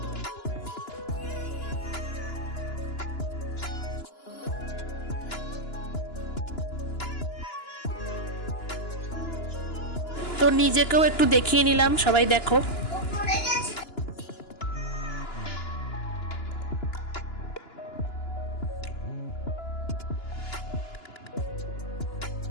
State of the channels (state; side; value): late; right; 2.9 ms